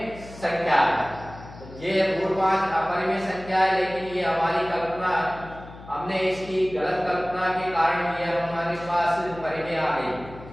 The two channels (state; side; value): noise; left; hum, 17 dB below the sound